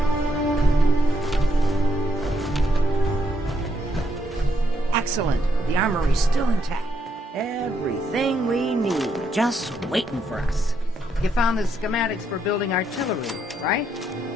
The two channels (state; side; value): normal; both; correlation 0.76